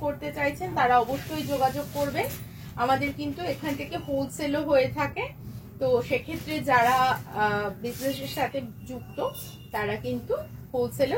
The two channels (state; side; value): identical; both; correlation 1.00